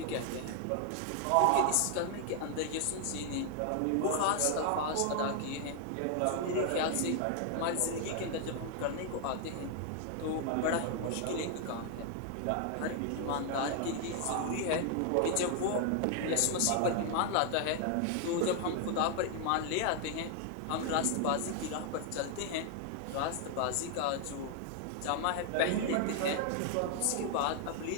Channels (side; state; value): both; different; correlation 0.00